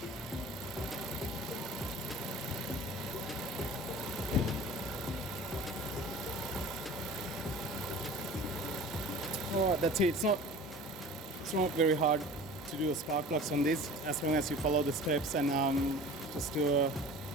Alright, that's it. It's not very hard to do a spark plugs on this, as long as you follow the steps and just do a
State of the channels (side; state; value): both; normal; correlation 0.41